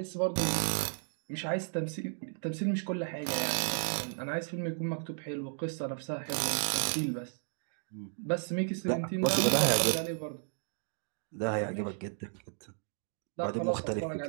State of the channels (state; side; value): silent; left; 55 dB below the other